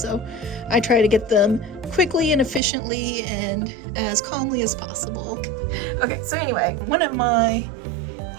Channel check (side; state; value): left; drops out; at 2.6 s